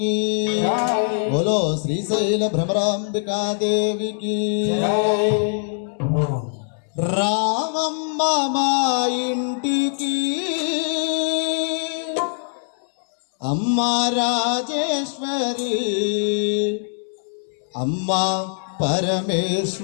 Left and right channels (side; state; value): right; silent; digital silence